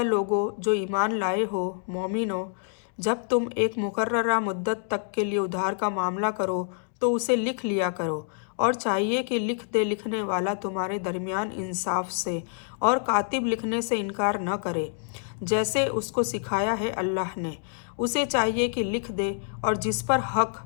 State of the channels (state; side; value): silent; right; digital silence